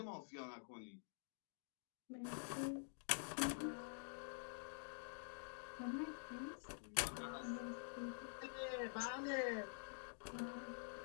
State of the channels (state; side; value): silent; right; digital silence